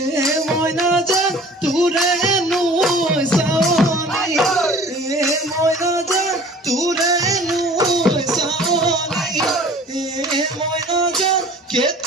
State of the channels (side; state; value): both; normal; correlation 0.47